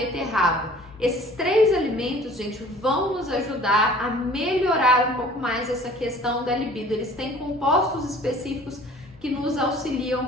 Esses 3 alimentos, gente, vão nos ajudar a melhorar um pouco mais essa questão da libido. Eles têm compostos específicos que nos auxiliam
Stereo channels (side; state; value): both; normal; correlation 0.49